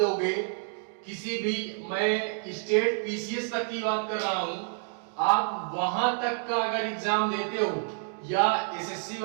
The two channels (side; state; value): left; silent; 59 dB below the other